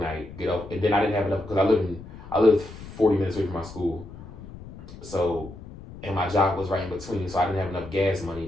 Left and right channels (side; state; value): left; noise; rumble, 15 dB below the sound